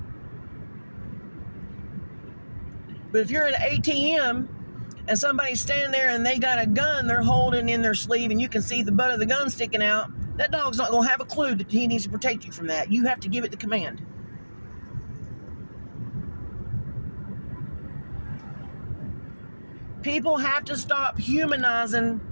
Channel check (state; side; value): inverted; both; correlation -1.00